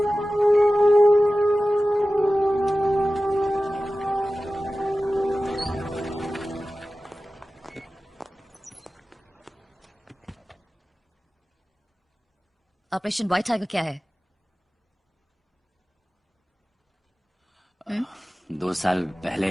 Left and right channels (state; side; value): normal; both; correlation 0.96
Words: operation white tiger क्या है? 2 साल पहले